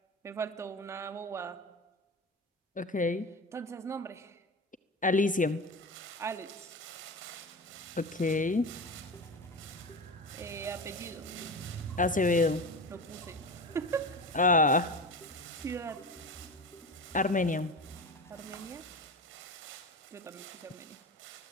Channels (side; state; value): both; normal; correlation 0.27